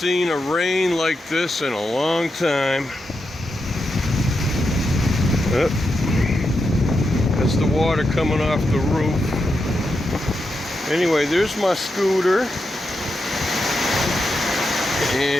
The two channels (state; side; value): normal; both; correlation 0.86